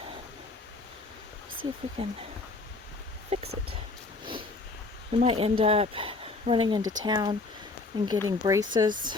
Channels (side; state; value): right; quieter; 3.6 dB